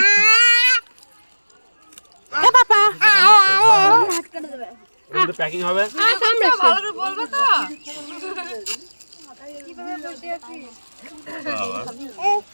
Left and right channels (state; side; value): inverted; both; correlation -1.00